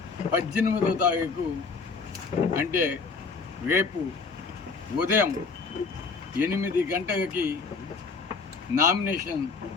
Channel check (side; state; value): right; quieter; 4.7 dB